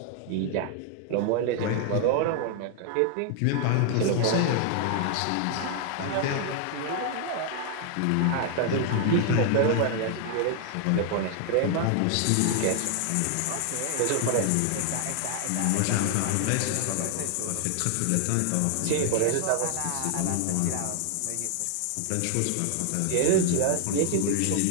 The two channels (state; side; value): different; both; correlation 0.00